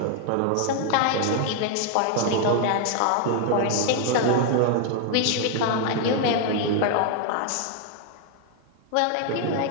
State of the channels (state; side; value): different; both; correlation 0.00